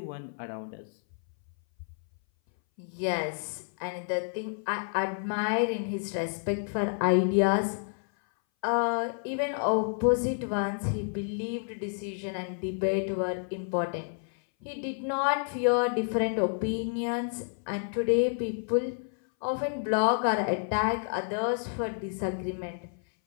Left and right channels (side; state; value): right; silent; 58 dB below the other